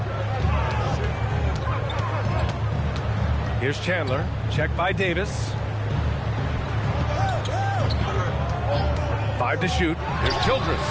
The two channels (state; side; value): identical; both; correlation 1.00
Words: Here's Chandler. Checked by Davis. 5 to shoot. Here's